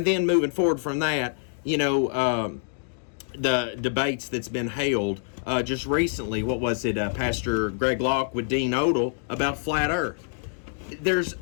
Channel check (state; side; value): silent; right; digital silence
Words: then moving forward from that, the debates that's been held just recently. What was it? Pastor Greg Locke with Dean Odell about flat earth. There's